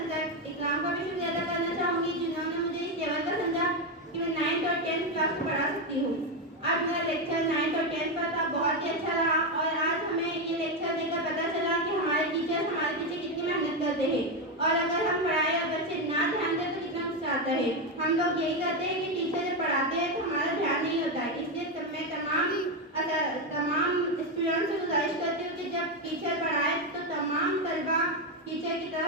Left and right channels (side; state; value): both; normal; correlation 0.08